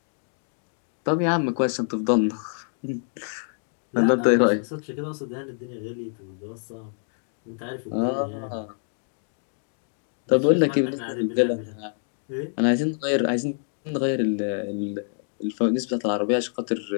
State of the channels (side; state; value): right; silent; 61 dB below the other